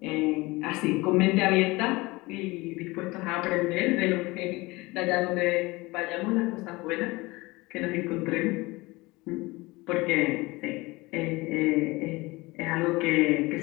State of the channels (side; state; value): right; quieter; 22.3 dB